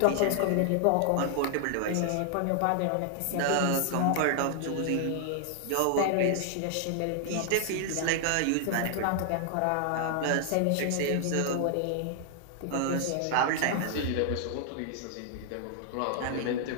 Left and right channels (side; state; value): both; different; correlation 0.00